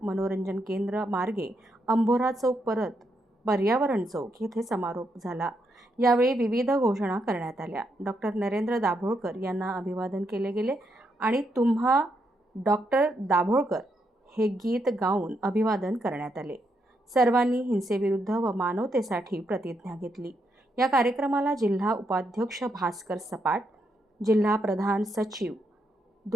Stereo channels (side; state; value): both; normal; correlation 0.79